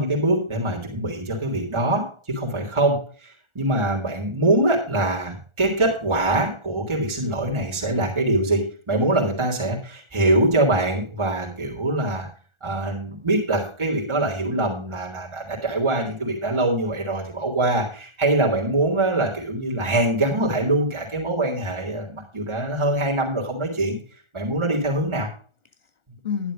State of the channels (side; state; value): left; late; 1.4 ms